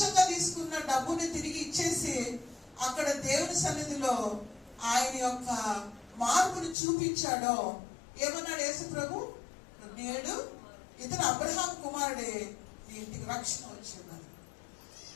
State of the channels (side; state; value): right; drops out; at 6.8 s